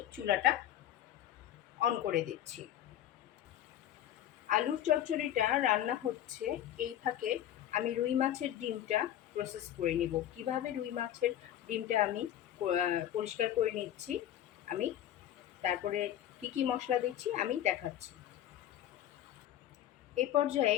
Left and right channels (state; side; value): quieter; right; 11.8 dB